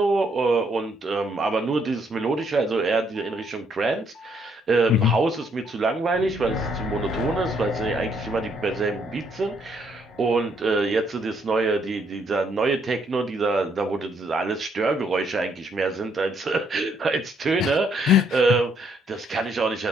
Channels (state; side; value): normal; both; correlation 0.70